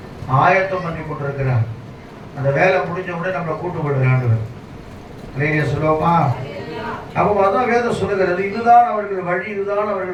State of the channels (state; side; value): identical; both; correlation 1.00